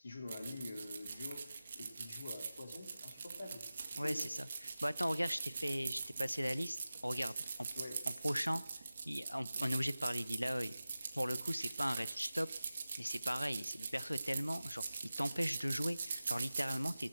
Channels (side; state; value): both; inverted; correlation -0.95